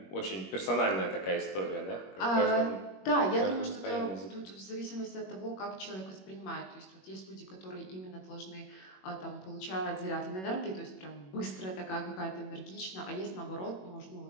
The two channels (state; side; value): late; right; 21 ms